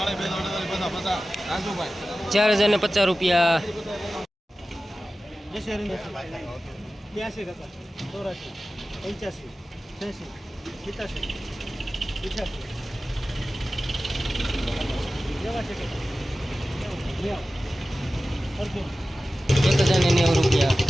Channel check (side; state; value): both; normal; correlation 0.95